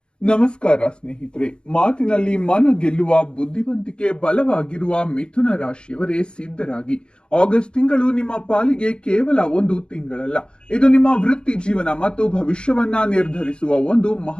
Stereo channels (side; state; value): right; late; 0.052 ms